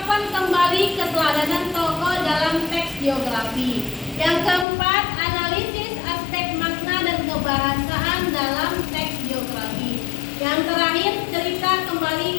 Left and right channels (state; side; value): drops out; right; at 4.7 s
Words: kembali keteladanan tokoh dalam teks biografi. Yang keempat, analisis aspek makna dan kebahasaan dalam teks biografi. Yang terakhir, cerita kembali